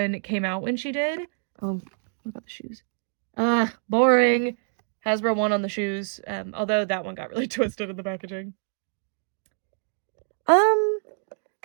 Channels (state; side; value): silent; left; digital silence